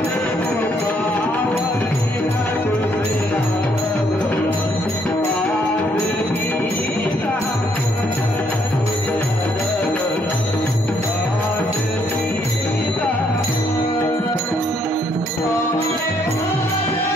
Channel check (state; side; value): normal; both; correlation 0.70